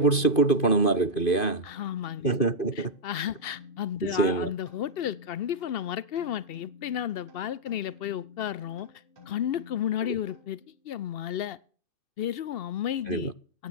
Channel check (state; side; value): late; right; 2.5 ms